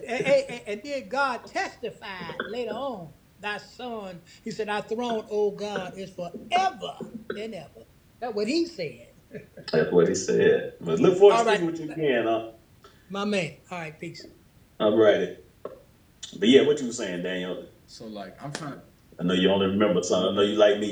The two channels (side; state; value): both; identical; correlation 1.00